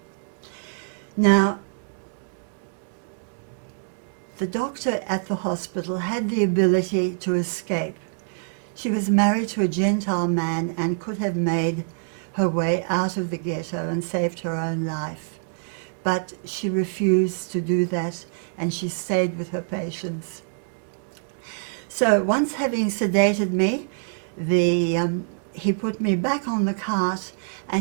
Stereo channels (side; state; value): left; silent; digital silence